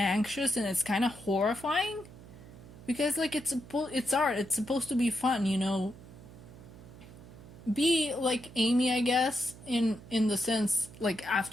and it's kind of horrifying because like it's art, it's supposed to be fun, you know. Be like Amy, I guess, in the sense like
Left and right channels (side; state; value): right; noise; hum, 18 dB below the sound